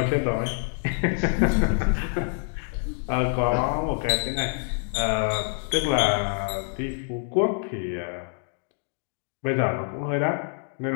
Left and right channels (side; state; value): right; silent; 61 dB below the other